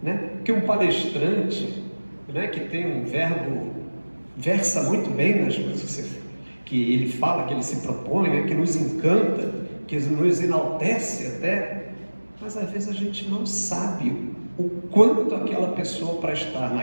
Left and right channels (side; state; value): both; inverted; correlation -1.00